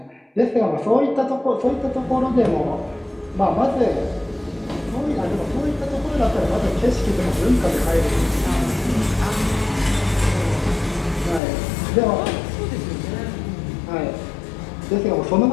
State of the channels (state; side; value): drops out; right; at 11.4 s